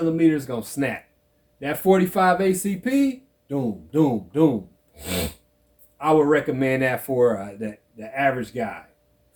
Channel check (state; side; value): identical; both; correlation 1.00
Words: is going to snap. That 45 ACP, doom, doom, doom. I would recommend that for the average guy.